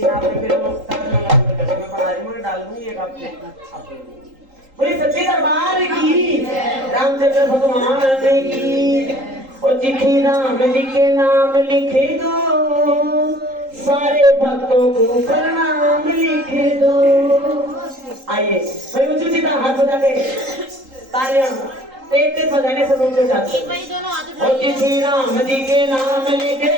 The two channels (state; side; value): late; left; 3.8 ms